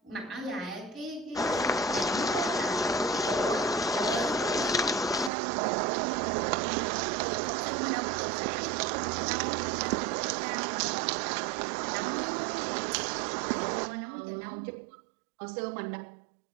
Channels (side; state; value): left; drops out; at 5.3 s